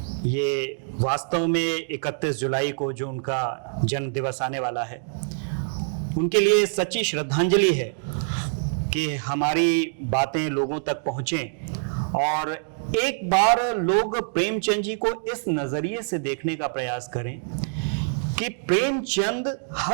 ये वास्तव में 31 जुलाई को जो उनका जन्म दिवस आने वाला है, उनके लिए सच्ची श्रद्धांजलि है कि हमारी बातें लोगों तक पहुंचें और एक बार लोग प्रेमचंद जी को इस नजरिए से देखने का प्रयास करें कि प्रेमचंद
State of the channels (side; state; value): left; silent; digital silence